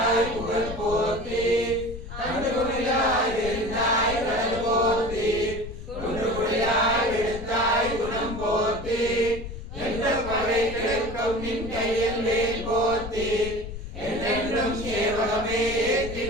புகழ் போத்தி அன்புகுடியாய் விருந்தாய் கடல் போத்தி குன்றுகுடியாய் விடுத்தாய் குணம் போத்தி என்ற பகை கிழக்கும் நின் கையில் வேல் போத்தி என்றென்றும் சேவகமே ஏற்றி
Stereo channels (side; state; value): left; noise; rumble, 10 dB below the sound